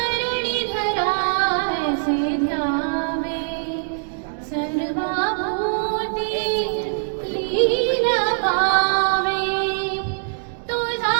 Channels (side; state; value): left; silent; digital silence